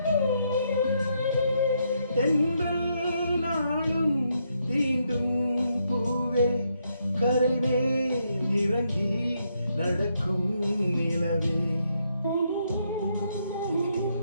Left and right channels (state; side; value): inverted; both; correlation -0.77